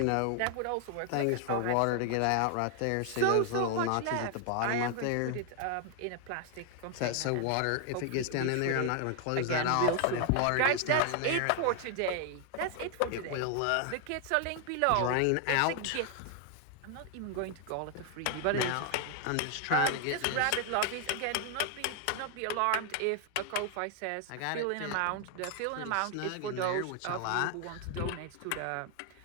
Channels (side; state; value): both; different; correlation 0.00